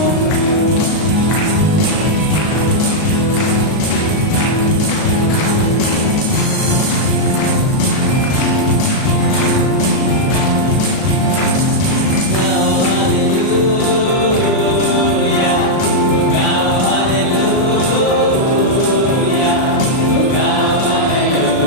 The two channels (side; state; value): right; late; 37 ms